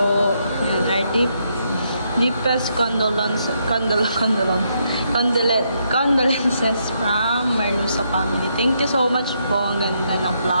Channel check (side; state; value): both; inverted; correlation -0.77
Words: Yan, our deepest condolences from Merluza family. Thank you so much po. Ang ganda ng